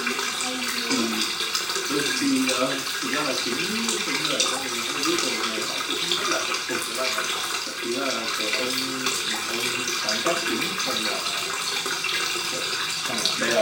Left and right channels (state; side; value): identical; both; correlation 1.00